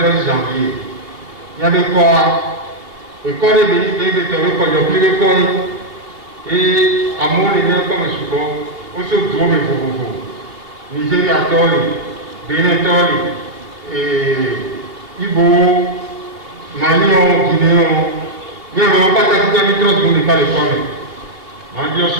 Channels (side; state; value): left; late; 2.9 ms